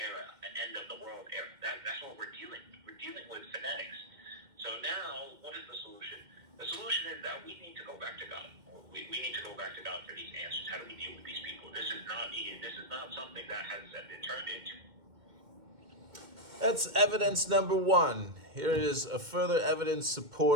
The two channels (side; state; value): left; late; 2.1 ms